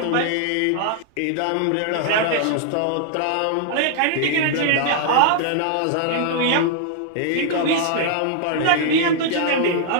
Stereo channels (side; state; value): both; different; correlation -0.01